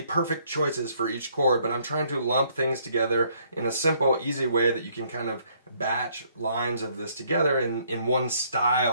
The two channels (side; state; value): both; inverted; correlation -0.66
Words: perfect choices for each chord, but I'm trying to lump things together in a simple, easy way that you can kind of batch lines of this together in one